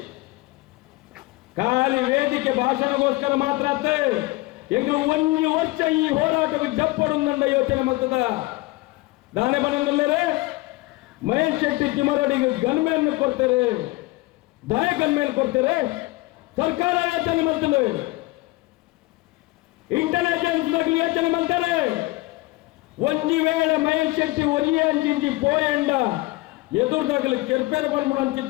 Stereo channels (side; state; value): right; quieter; 21.3 dB